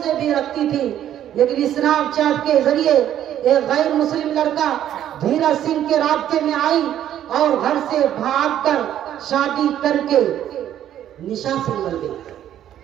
بھی رکھتی تھی، لیکن اسنیپ چیٹ کے ذریعے ایک غیر مسلم لڑکا دھیرج سنگھ کے رابطے میں آئی اور گھر سے بھاگ کر شادی کر کے نشاسی بن گئی۔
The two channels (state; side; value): quieter; left; 11.1 dB